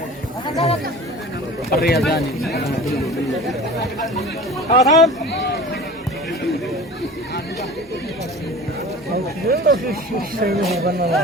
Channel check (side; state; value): both; normal; correlation 0.39